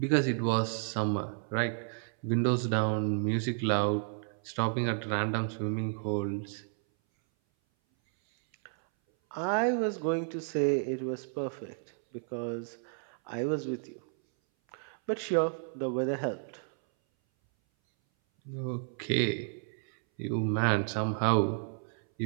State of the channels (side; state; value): left; silent; 57 dB below the other